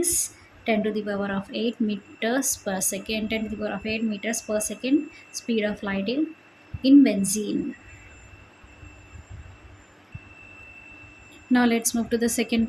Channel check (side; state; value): both; identical; correlation 1.00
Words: 10 to the power of 8 meters per second. 10 to the power of 8 meters per second speed of light in benzene. Now let's move to the second